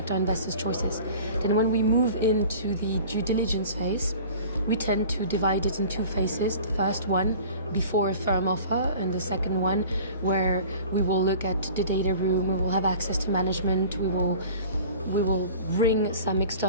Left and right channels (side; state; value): both; inverted; correlation -0.43